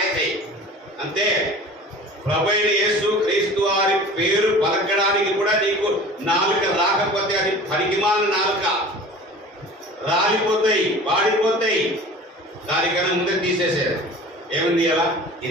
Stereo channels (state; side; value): normal; both; correlation 0.41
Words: అంతే. ప్రభు అయిన యేసు క్రీస్తు వారి పేరు పలకడానికి కూడా నీకు నాలుక రాకపోతే అది పనికిమాలిన నాలుక. రాలిపోతాయి, వాడిపోతాయి. దానికన్నా ముందే తీసేసారు. ఏముంది అలా?